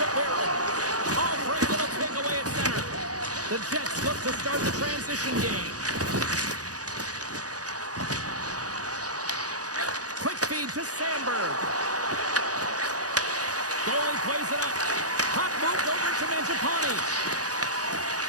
Barron. Albright little takeaway at center. The Jets look to start the transition game. Quick feed to Sandberg. Goalie plays it up. Puck moved over to Mangiapane.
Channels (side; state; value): left; late; 0.67 ms